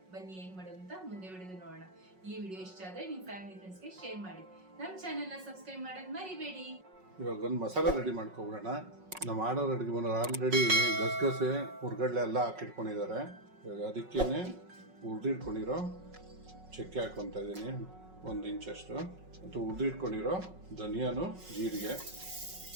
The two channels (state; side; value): late; left; 5.4 ms